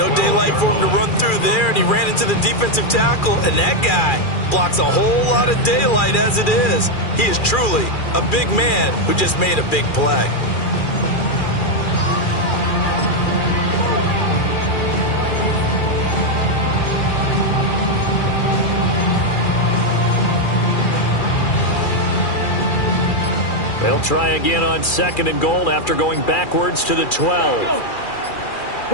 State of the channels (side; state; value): right; late; 2.4 ms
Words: daylight for him to run through there, and he ran into the defensive tackle, and that guy blocks a whole lot of daylight as it is. He is truly a big man who just made a big play. They'll try again on second and goal after going backwards to the 12.